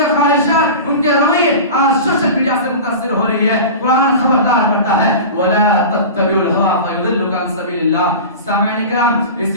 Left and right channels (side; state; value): both; inverted; correlation -0.31